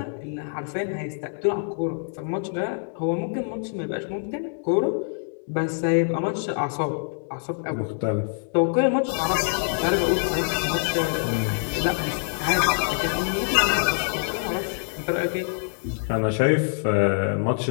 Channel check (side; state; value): right; silent; digital silence